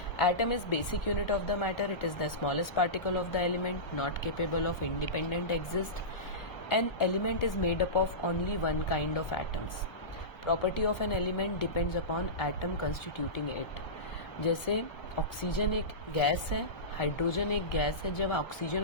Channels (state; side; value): late; right; 1.3 ms